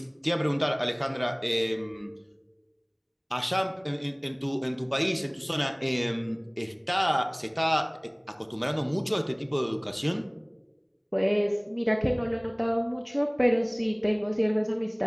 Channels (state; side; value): identical; both; correlation 1.00